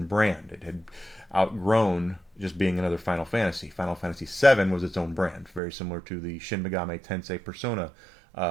brand. It had outgrown just being another Final Fantasy. Final Fantasy VII was its own brand, very similar to the Shin Megami Tensei Persona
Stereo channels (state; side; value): drops out; left; at 5.6 s